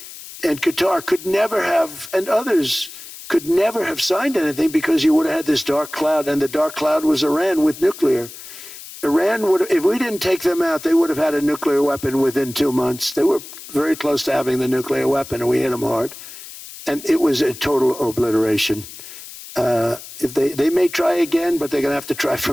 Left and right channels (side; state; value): left; noise; hiss, 15 dB below the sound